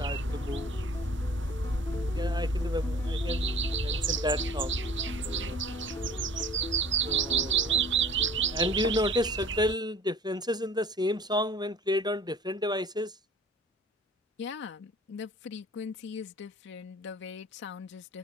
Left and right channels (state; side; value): normal; both; correlation 0.47